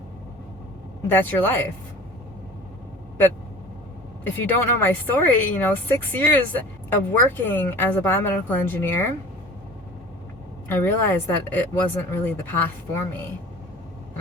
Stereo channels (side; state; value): both; normal; correlation 0.42